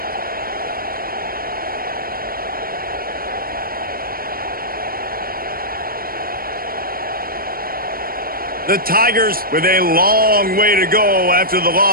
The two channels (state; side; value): late; left; 0.43 ms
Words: The Tigers with a long way to go after the